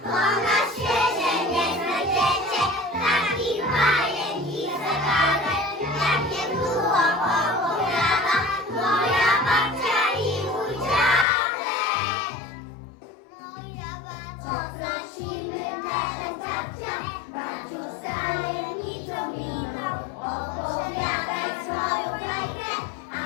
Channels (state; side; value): drops out; right; at 11.2 s